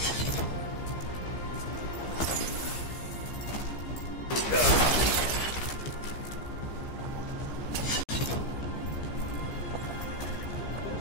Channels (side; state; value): right; late; 15 ms